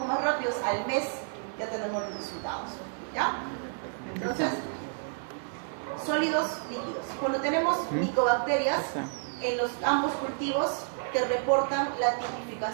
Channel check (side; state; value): left; silent; 56 dB below the other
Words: más rápidos, al mes ya tenemos los resultados, ¿ya? Entonces, sólidos, líquidos. Cuando tenemos micobacterias, en ambos cultivos te reportan la